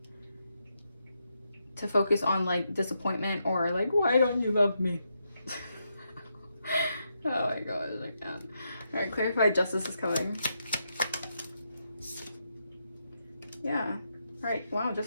To focus on like disappointment or like, why don't you love me? Oh my god, I can't. All right, clarify justice is coming. Yeah. All right, wow,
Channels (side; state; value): both; inverted; correlation -0.82